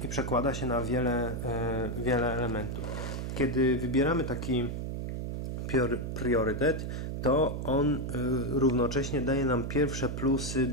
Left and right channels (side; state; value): right; noise; hum, 4 dB below the sound